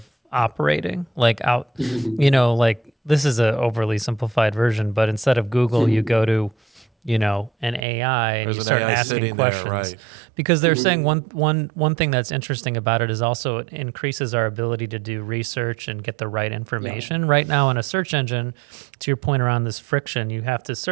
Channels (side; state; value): left; drops out; at 7.9 s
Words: operating? Like out, like this is a overly simplified version, but instead of Google, you go to, an AI and There's you an start AI asking sitting questions. there, right. Because they're saying one thing that's interesting about it is also it increases our ability to do research and get the right information. Right now in a search engine, to your point around this friction, you have to